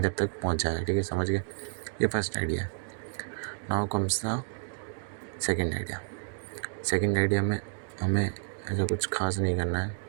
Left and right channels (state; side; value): silent; left; 58 dB below the other